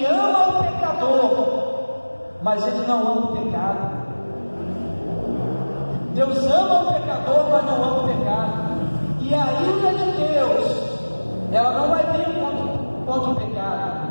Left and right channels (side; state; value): both; inverted; correlation -1.00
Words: ama o pecador, mas Ele não ama o pecado. Deus ama o pecador, mas não ama o pecado. E a ira de Deus, ela não vai vir contra o